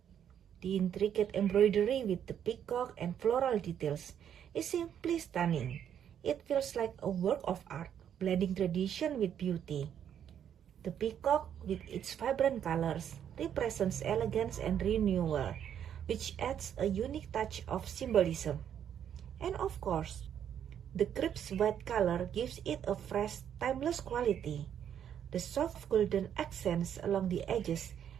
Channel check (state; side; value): quieter; left; 9.2 dB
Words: The intricate embroidery with the peacock and floral details is simply stunning. It feels like a work of art, blending tradition with beauty. The peacock, with its vibrant colors, represents elegance and renewal, which adds a unique touch of symbolism. And of course, the crisp white color gives it a fresh, timeless quality. The soft golden accents along the edges